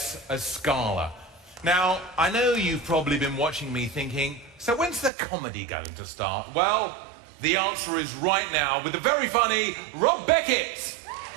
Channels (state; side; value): drops out; left; at 5.1 s